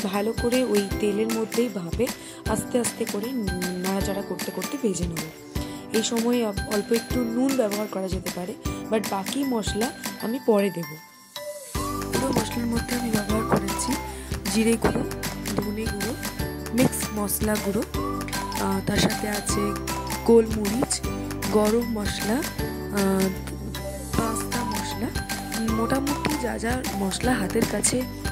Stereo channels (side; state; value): both; identical; correlation 1.00